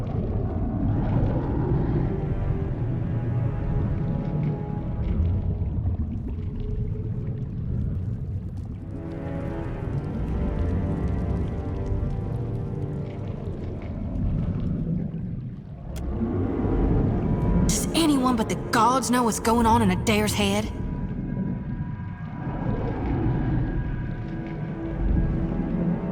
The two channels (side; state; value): both; identical; correlation 1.00